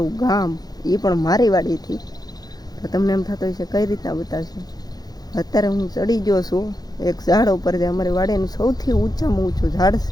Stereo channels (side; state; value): right; late; 0.19 ms